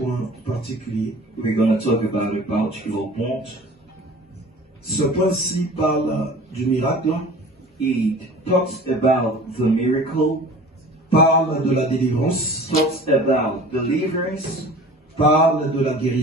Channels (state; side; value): normal; both; correlation 0.43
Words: particulier. We're going to talk about a particular point. Ce point-ci parle du miracle, It talks about the miracle, parle de la délivrance, talks about deliverance, parle de la